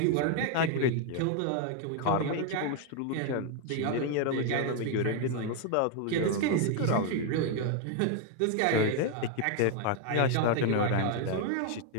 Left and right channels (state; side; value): different; both; correlation 0.01